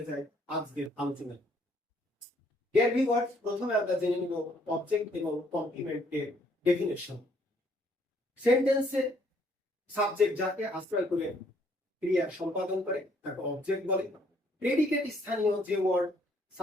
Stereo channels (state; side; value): normal; both; correlation 0.66